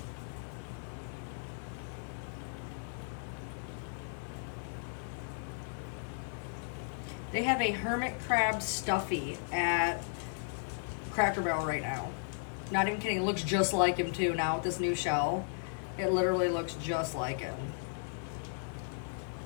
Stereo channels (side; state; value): right; silent; digital silence